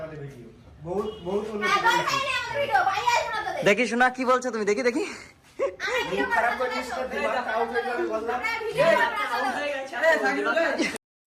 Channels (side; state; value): both; identical; correlation 1.00